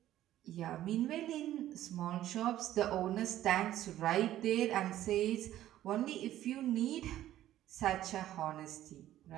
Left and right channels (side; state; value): left; quieter; 13.1 dB